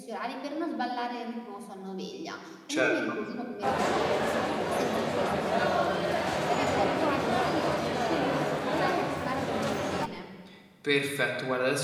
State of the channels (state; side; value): identical; both; correlation 1.00